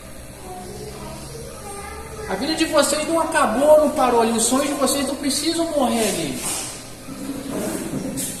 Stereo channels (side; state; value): both; identical; correlation 1.00